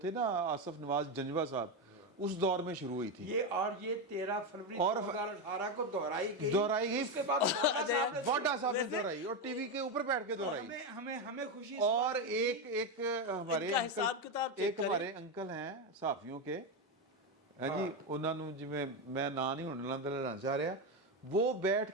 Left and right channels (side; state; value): both; normal; correlation 0.10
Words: نا آصف نواز جنجوہ صاحب اس دور میں شروع ہوئی تھی یہ 13 فروری 2018 کو دہرائی گئی. اس کے بعد وانڈا صاحب نے دہرائی اور ٹی وی کے اوپر بیٹھ کے دہرائی. ہمیں خوشی اور ایک ہمارے انکل ہیں صحافیوں کے جی انہوں نے جی میں نا نہیں ہونے لینا چاہ رہا وہ بیٹھ